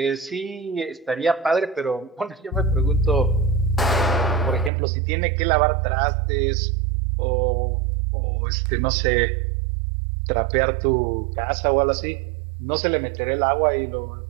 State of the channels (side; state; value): left; drops out; at 4.7 s